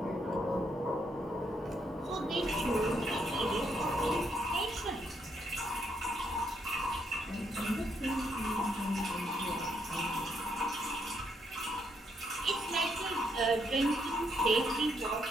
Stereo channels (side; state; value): both; normal; correlation 0.75